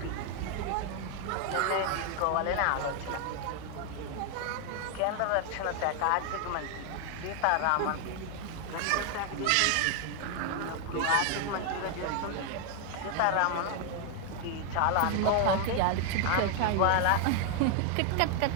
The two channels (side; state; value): both; different; correlation 0.00